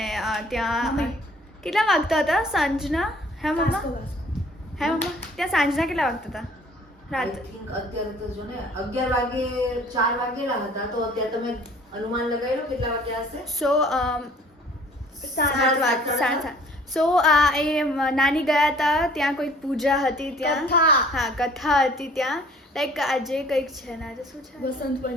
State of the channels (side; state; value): both; normal; correlation 0.54